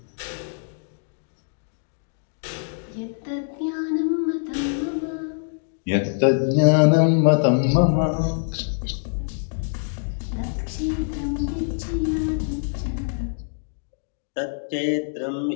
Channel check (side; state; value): right; silent; digital silence